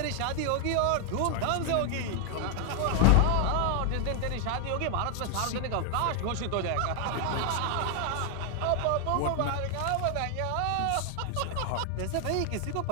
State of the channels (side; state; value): both; different; correlation 0.00